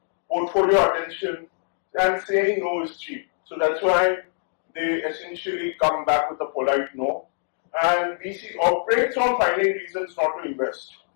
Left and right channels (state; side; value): silent; right; digital silence